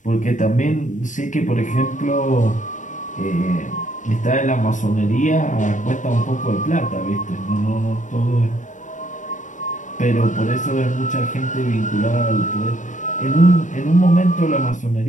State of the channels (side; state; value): right; late; 0.36 ms